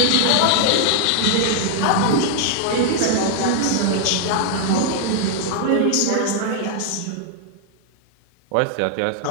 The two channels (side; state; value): both; different; correlation -0.01